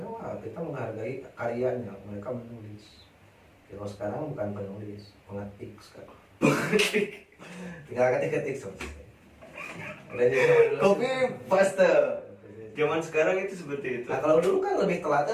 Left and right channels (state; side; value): identical; both; correlation 1.00